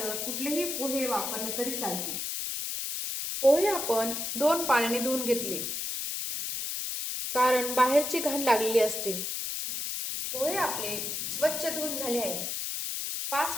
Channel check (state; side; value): noise; left; hiss, 3 dB below the sound